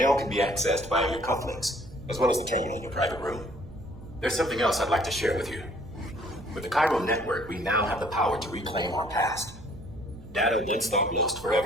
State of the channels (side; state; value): right; noise; hum, 18 dB below the sound